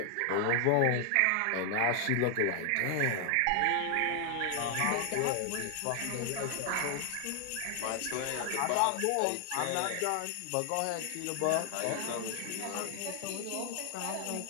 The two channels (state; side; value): different; both; correlation 0.00